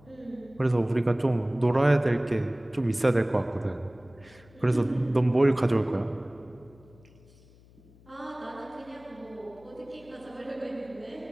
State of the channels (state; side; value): noise; left; hum, 26 dB below the sound